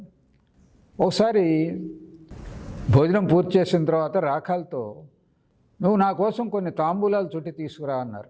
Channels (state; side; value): identical; both; correlation 1.00